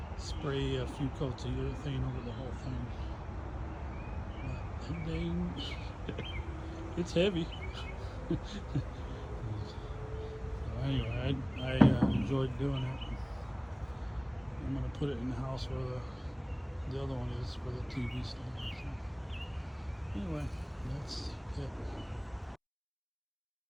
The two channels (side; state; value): both; identical; correlation 1.00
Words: spray a few coats of urethane over the whole thing. But dang, it's heavy. So anyway, I enjoyed doing it. I'm going to put it in the house where the other one is, where the TV stand is. Anyway, that's it.